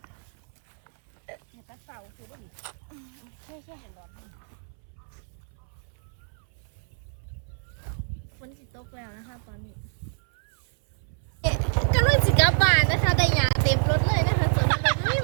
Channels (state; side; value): silent; left; 60 dB below the other